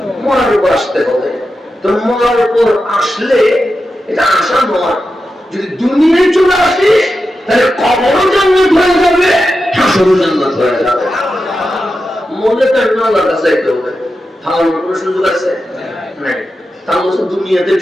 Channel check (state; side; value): normal; both; correlation 0.90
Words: মরার উপর আসতে হবে। তো মরার উপর আসলে এটা আশা নয়, যদি দুনিয়ায় চলে আসিস তাহলে কবরও জান্নাত হয়ে যাবে, হাসরও জান্নাত হয়ে যাবে। মনে তো আল্লাহর কাছে যেতে হবে, তাহলে কোনো সুযোগ আছে নাই। তাহলে দুনিয়াতে